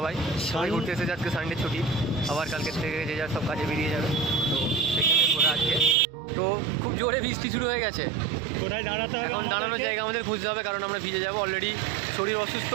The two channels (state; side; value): drops out; left; at 6.0 s